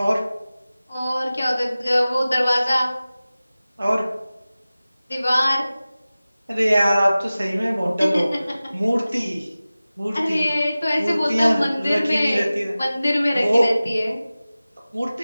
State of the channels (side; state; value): both; inverted; correlation -0.97